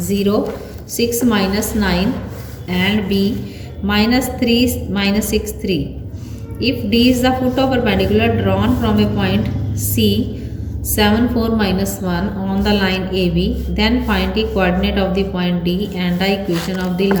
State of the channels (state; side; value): identical; both; correlation 1.00